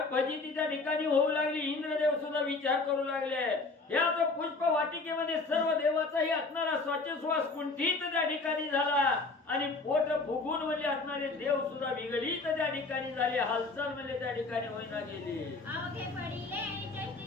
त्या ठिकाणी होऊ लागली. इंद्रदेव सुद्धा विचार करू लागले. याच पुष्प वाटिकेमध्ये सर्व देवाचाही असणारा श्वास कुंठित त्या ठिकाणी झाला आणि पोट फुगून म्हणजे असणारे देव सुद्धा विगलित त्या ठिकाणी झाले. हालचाल म्हणजे त्या ठिकाणी होईना गेली. अवघे पडिले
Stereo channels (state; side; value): quieter; right; 3.7 dB